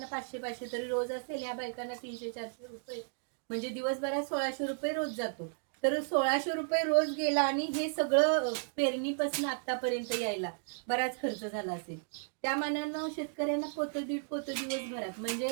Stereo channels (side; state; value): left; silent; digital silence